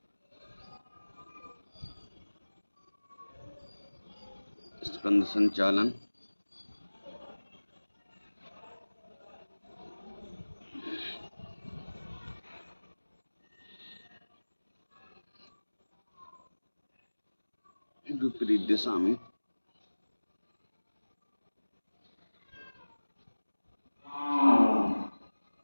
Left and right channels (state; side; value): inverted; both; correlation -1.00